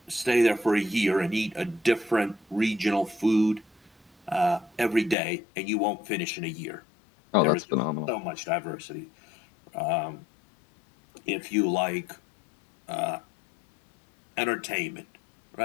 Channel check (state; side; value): drops out; right; at 5.2 s